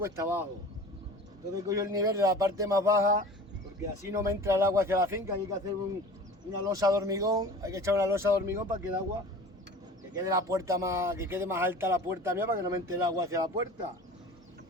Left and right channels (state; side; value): normal; both; correlation 0.40